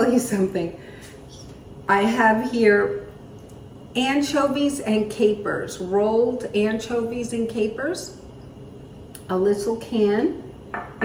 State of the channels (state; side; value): identical; both; correlation 1.00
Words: you something. I have here anchovies and capers, rolled anchovies and capers, a little can.